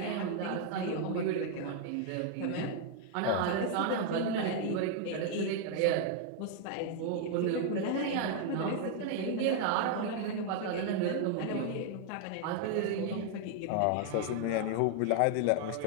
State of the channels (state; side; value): different; both; correlation 0.00